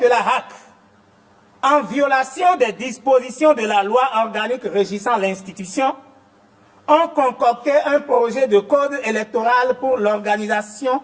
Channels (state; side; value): identical; both; correlation 1.00